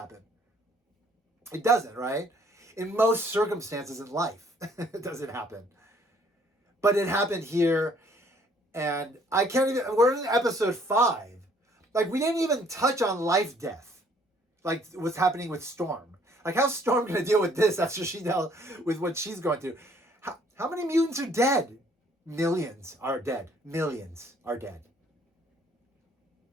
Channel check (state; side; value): normal; both; correlation 0.62